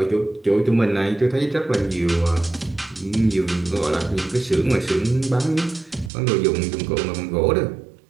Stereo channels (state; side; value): drops out; left; at 6.1 s